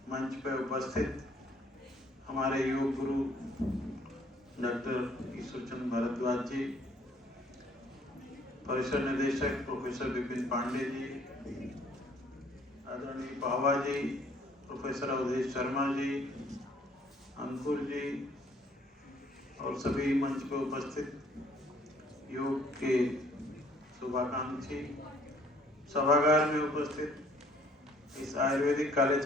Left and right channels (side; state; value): both; normal; correlation 0.60